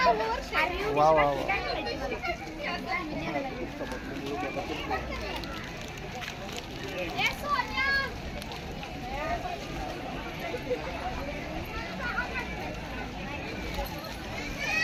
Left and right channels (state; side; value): identical; both; correlation 1.00